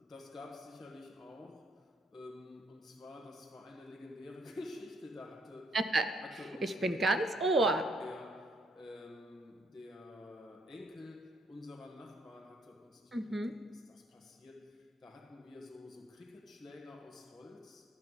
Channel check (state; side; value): normal; both; correlation 0.70